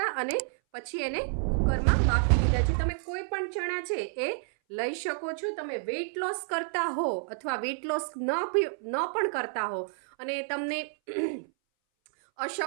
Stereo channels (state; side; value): silent; left; 58 dB below the other